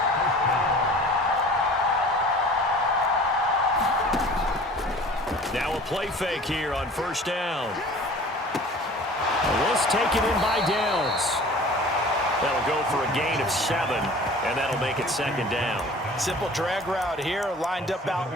Now a play fake here on first down. This taken in by Downs. That'll go for a gain of 7, and that'll make it second down. Simple drag route here, lined up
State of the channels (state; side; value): normal; both; correlation 0.45